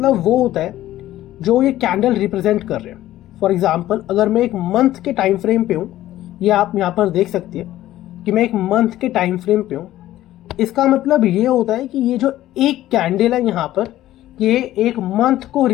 वो होता है जो ये कैंडल रिप्रेजेंट कर रहे हैं। फॉर एग्जाम्पल, अगर मैं एक मंथ के टाइम फ्रेम पे हूँ, ये आप यहाँ पर देख सकते हैं कि मैं एक मंथ के टाइम फ्रेम पे हूँ। इसका मतलब ये होता है कि ये जो एक कैंडल है यहाँ पर, ये एक मंथ को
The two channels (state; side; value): quieter; right; 14.3 dB